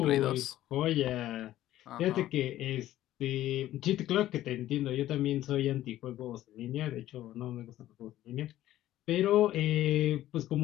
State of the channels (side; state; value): right; quieter; 13.9 dB